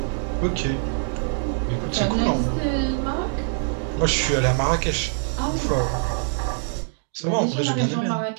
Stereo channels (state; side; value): silent; left; 63 dB below the other